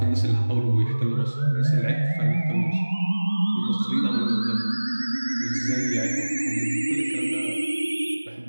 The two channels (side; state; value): both; inverted; correlation -1.00